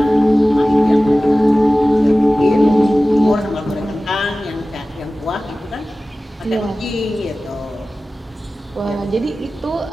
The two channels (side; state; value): both; normal; correlation 0.96